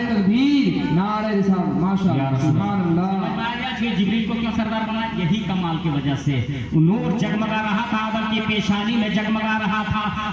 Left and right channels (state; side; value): identical; both; correlation 1.00